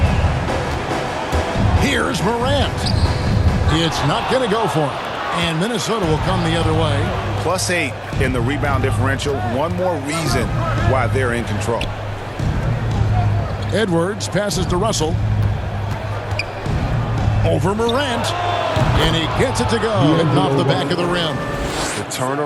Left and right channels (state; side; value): identical; both; correlation 1.00